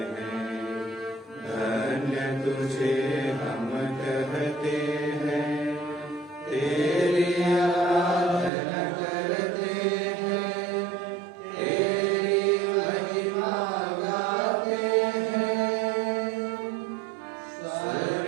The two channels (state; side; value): drops out; left; at 8.5 s